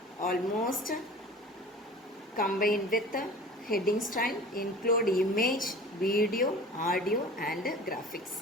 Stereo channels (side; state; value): both; normal; correlation 0.41